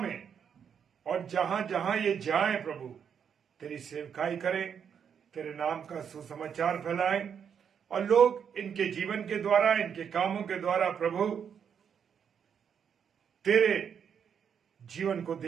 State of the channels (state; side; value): quieter; left; 7.5 dB